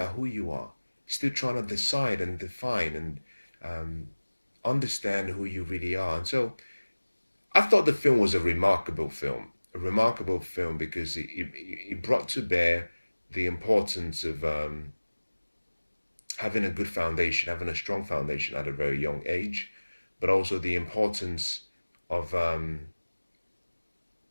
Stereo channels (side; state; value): both; inverted; correlation -1.00